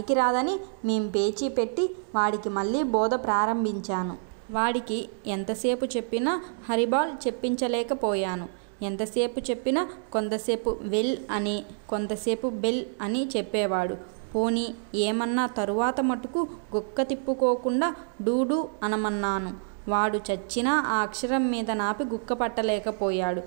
మేం పేచీ పెట్టి వాడికి మళ్ళీ బోధ ప్రారంభించాను. వాడికి ఎంతసేపు చెప్పినా హరిబాల్ చెప్పించలేకపోయాను. ఎంతసేపు చెప్పినా కొంతసేపు వెల్ అని, కొంతసేపు బెల్ అని చెప్పేవాడు. పోనీ ఏమన్నా తరువాత మటుకు గుక్క తిప్పుకోకుండా డూడు అనమన్నాను. వాడు చచ్చినా ఆ అక్షరం మీద నాపి గుక్క పట్టలేకపోయాడు.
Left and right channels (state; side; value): silent; left; digital silence